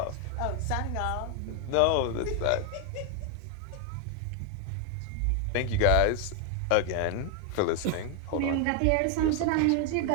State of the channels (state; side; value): different; both; correlation 0.01